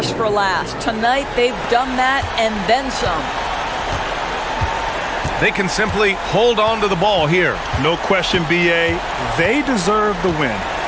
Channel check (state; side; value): identical; both; correlation 1.00